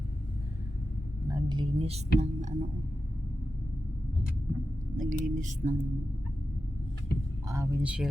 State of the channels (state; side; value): normal; both; correlation 0.92